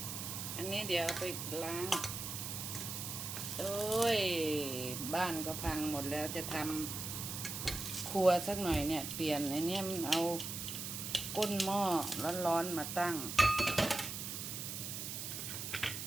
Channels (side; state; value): right; noise; hiss, 5 dB below the sound